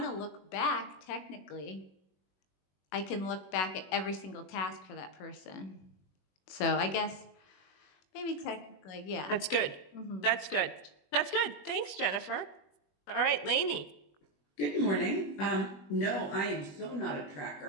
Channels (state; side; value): late; right; 21 ms